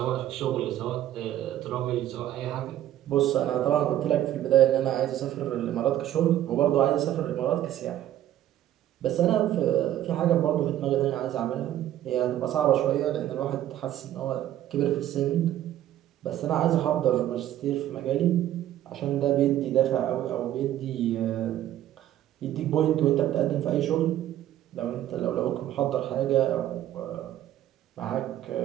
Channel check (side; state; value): left; quieter; 12.5 dB